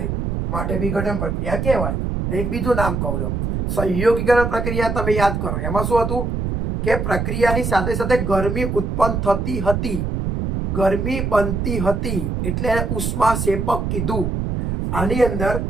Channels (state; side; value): noise; right; rumble, 2 dB below the sound